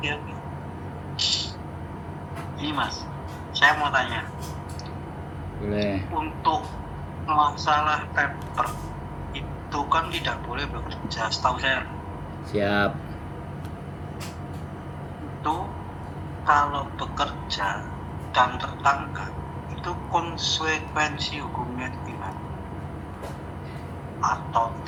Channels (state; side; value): identical; both; correlation 1.00